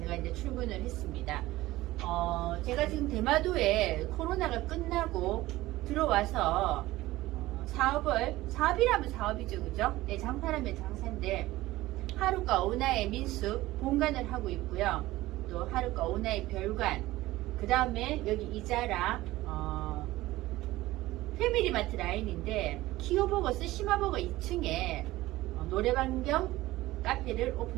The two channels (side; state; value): left; quieter; 17.5 dB